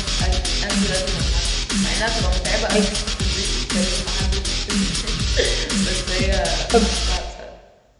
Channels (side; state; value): both; identical; correlation 1.00